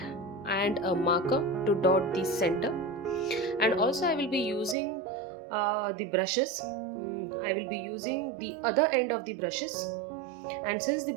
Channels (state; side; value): drops out; left; at 4.8 s